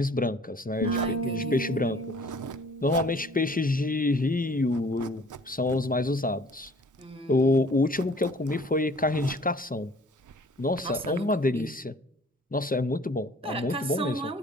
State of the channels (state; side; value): normal; both; correlation 0.53